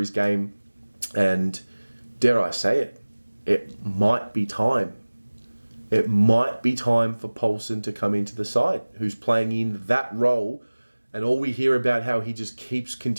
game. And dare I say it, it might be time. It might be time for Paulson to come into the side, who's playing in that role. And all we hear about how he just keeps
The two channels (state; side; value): inverted; both; correlation -1.00